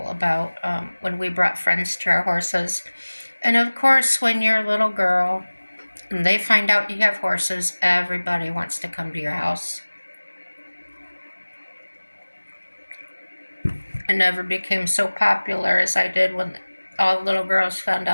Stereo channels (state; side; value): inverted; both; correlation -1.00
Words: about when we brought friends to our horses. And of course, when you're a little girl and they find out you have horses, everybody wants to come to your house. I never became so popular as I did when all the little girls found